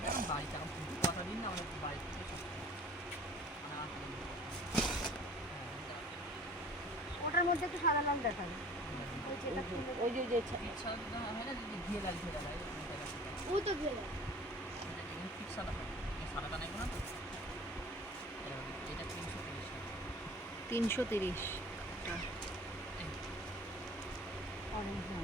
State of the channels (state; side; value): normal; both; correlation 0.46